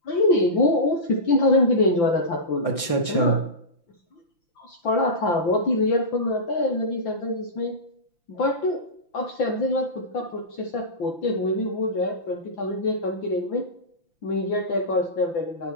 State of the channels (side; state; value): right; late; 5.9 ms